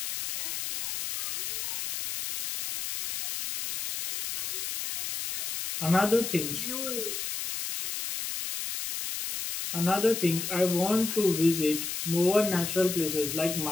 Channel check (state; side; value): noise; left; hiss, 4 dB below the sound